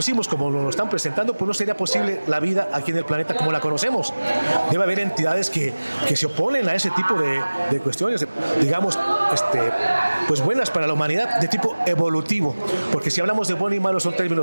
como nos lo están presentando, pues no sería posible la vida aquí en el planeta como la conocemos. Debe haber entidades que se oponen a ese tipo de cuestiones, digamos, pues buenas para la humanidad, de tipo evolutivo, porque si hablamos de bueno y malo son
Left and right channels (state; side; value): inverted; both; correlation -1.00